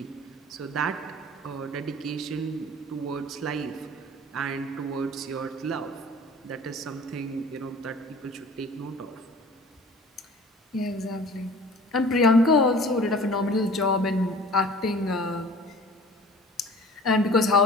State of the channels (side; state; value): both; normal; correlation 0.45